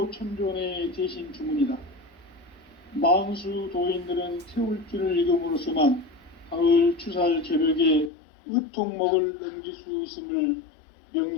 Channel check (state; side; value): drops out; right; at 8.1 s